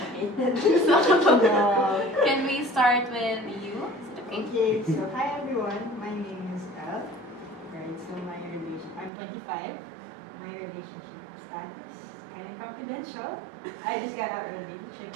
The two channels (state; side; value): drops out; left; at 9.1 s